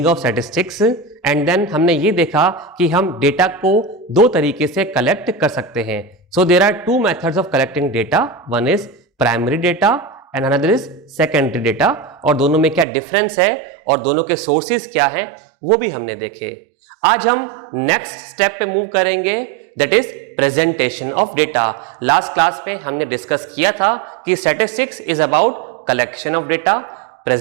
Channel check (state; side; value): drops out; left; at 12.9 s